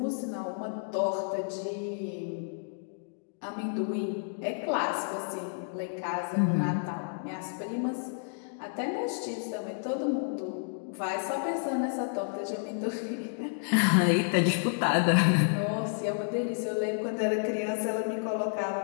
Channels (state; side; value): silent; right; digital silence